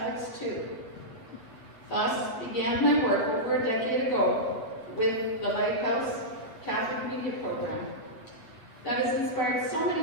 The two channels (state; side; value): late; right; 8.5 ms